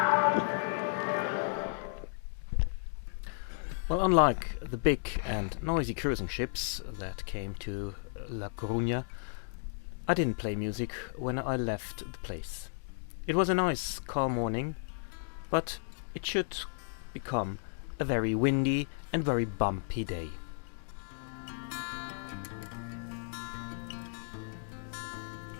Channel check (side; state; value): right; silent; digital silence